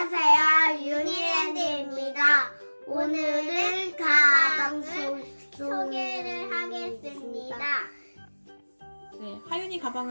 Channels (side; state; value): both; inverted; correlation -1.00